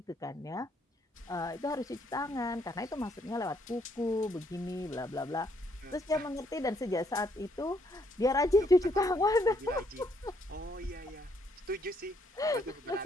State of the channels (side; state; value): both; normal; correlation 0.71